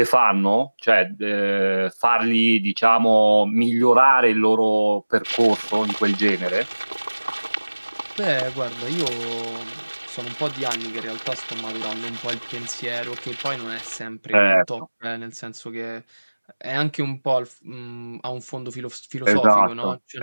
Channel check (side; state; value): both; inverted; correlation -1.00